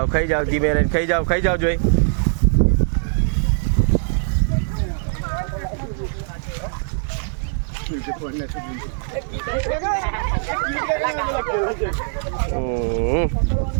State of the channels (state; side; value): silent; left; digital silence